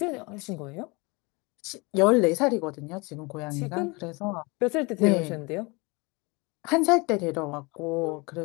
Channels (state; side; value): quieter; right; 27.1 dB